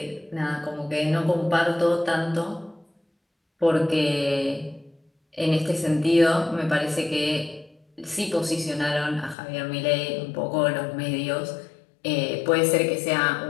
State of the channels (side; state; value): right; drops out; at 9.3 s